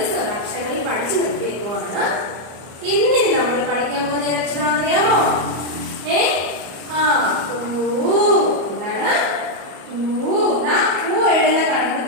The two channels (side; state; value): left; late; 34 ms